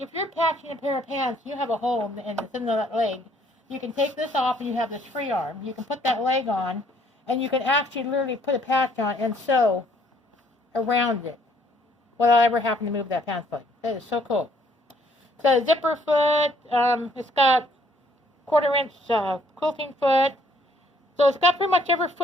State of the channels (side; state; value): both; normal; correlation 0.64